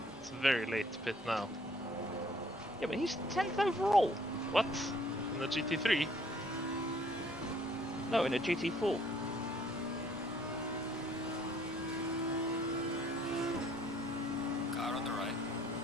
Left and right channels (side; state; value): both; normal; correlation 0.61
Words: it's very late to pit now. Yeah, but he's 10th overall. What? In the GT3? No, in a GT4. Car on the right.